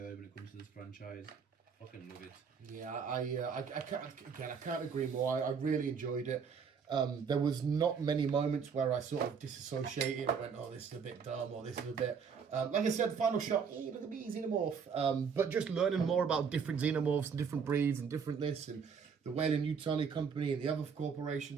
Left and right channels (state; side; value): quieter; left; 6.3 dB